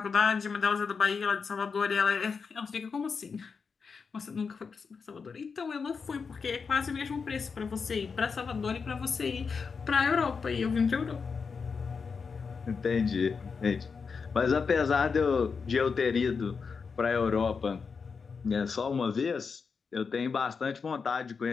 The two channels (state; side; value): quieter; right; 5.4 dB